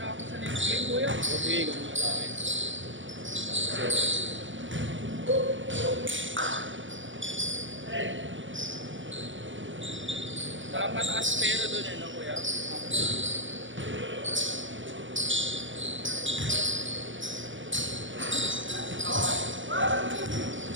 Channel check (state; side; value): late; left; 0.56 ms